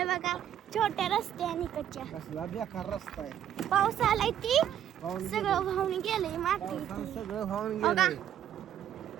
बघा छोट्या रस्त्याने कच्च्या. कसला बेकार रस्ता आहे. पाऊस आलाय ती पाहून सगळं वाहून गेलंय माती. पावसानं सगळं वाहून बघा. गेलं.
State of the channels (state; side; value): quieter; left; 10.3 dB